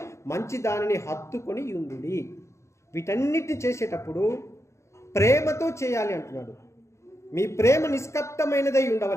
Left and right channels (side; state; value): right; late; 0.14 ms